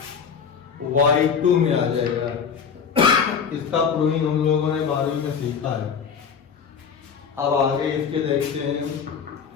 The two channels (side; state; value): right; quieter; 6.6 dB